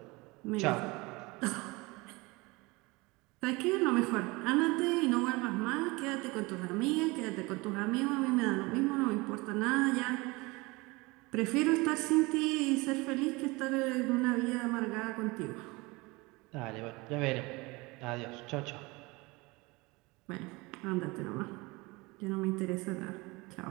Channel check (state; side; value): quieter; left; 24.2 dB